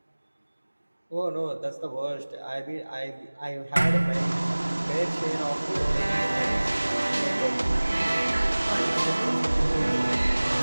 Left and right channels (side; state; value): both; inverted; correlation -1.00